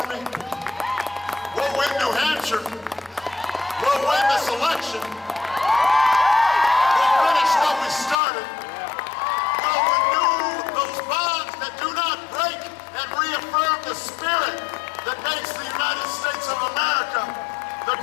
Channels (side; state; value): right; drops out; at 8.2 s